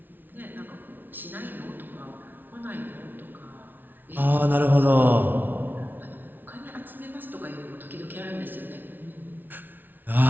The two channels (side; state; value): left; late; 0.090 ms